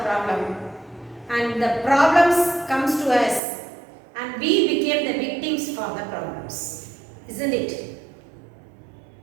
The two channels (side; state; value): left; drops out; at 3.4 s